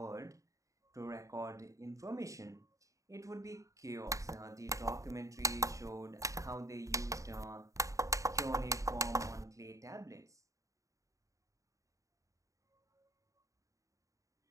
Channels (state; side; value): late; left; 0.16 ms